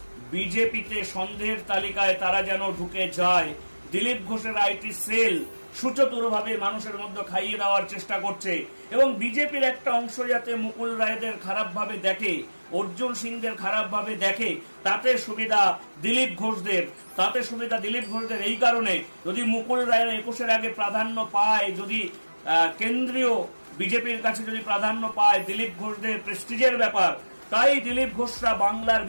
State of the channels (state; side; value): inverted; both; correlation -1.00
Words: বিজেপিতে সন্দেহের তালিকায় তারা যেন ঢুকে যায়। দিলীপ ঘোষের আইটি সেল সুচতুরভাবে মানুষের মধ্যে খাইয়ে দেওয়ার চেষ্টা করছে, এবং বিজেপির একটা অংশ যাতে মুকুল রায়দের খারাপভাবে দেখে, অর্জুন সিংদের খারাপভাবে দেখে, তাতে সুবিধা দিলীপ ঘোষদের। এই কারণে যদি মুকুল রায়ের 21-এর আগে প্রাধান্য পায়, যদি কেন্দ্রীয় বিজেপির কাছে যদি প্রাধান্য পায় দিলীপ ঘোষদের প্রেস্টিজের ব্যাপার, তাই দিলীপ ঘোষরা বাংলার